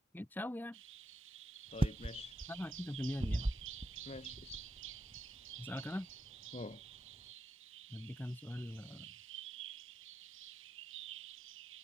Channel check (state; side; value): normal; both; correlation 0.85